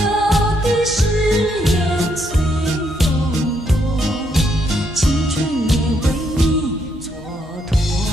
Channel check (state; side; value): normal; both; correlation 0.75